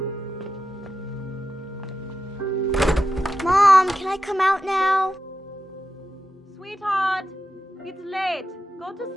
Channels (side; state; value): both; normal; correlation 0.90